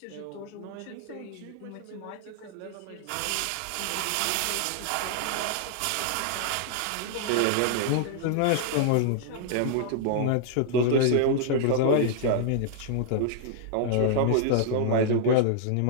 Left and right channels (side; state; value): both; different; correlation 0.00